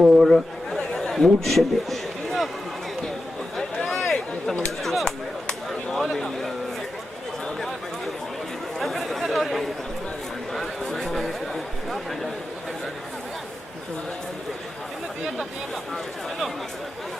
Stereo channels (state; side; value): normal; both; correlation 0.91